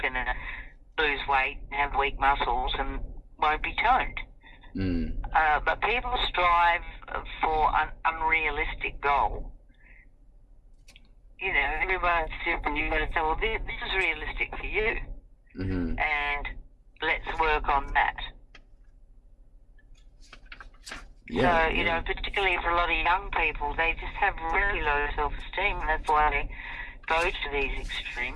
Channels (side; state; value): both; identical; correlation 1.00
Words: going to lose weight and have weak muscles and won't be toned. But people strive for an unrealistic goal. Everyone's different. You've got to say, well, this is realistic for you, and let's work on that. Yeah, so, particularly for a lot of young people, they just have really low self-esteem, and that's why they go to these